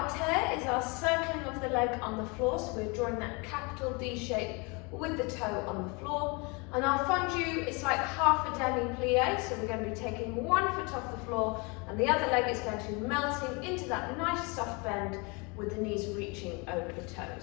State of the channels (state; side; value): quieter; right; 29.7 dB